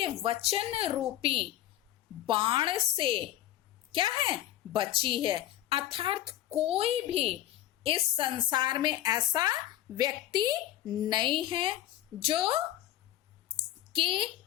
वचन रूपी बाण से क्या है, बची है। अर्थात कोई भी इस संसार में ऐसा व्यक्ति नहीं है जो कि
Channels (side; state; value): right; quieter; 13.5 dB